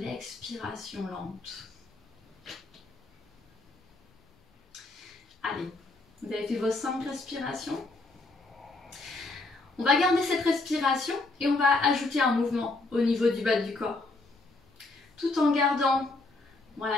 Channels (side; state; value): right; quieter; 3.2 dB